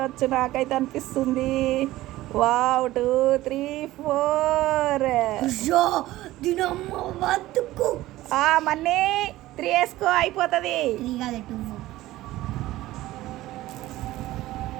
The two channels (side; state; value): left; quieter; 16.5 dB